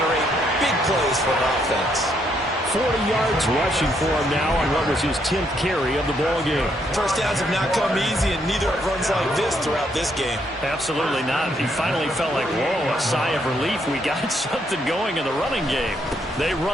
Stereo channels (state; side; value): normal; both; correlation 0.73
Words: big plays for an offense. 40 yards rushing for him now on what was his 10th carry of the ball game. First downs have not come easy, and neither have runs like this throughout this game. Absolutely not. He finally felt like, whoa, a sigh of relief. We got something going in the running game. They